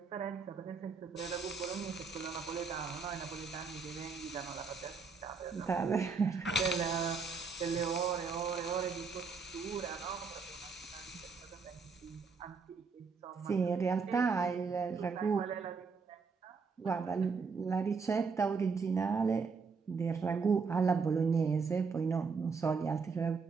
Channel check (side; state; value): left; quieter; 5.0 dB